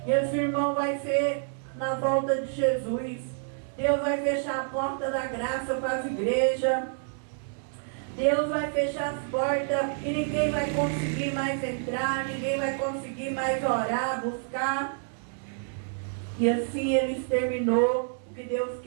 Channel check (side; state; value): left; silent; digital silence